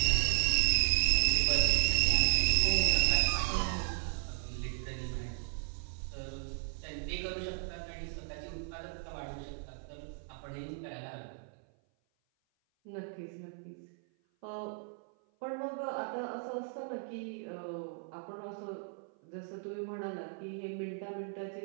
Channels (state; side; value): silent; left; 54 dB below the other